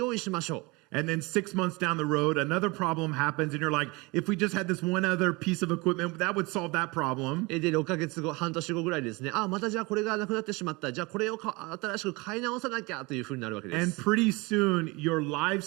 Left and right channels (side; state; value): left; quieter; 25.4 dB